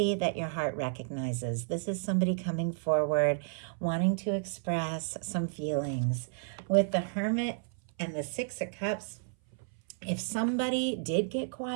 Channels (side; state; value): left; silent; 57 dB below the other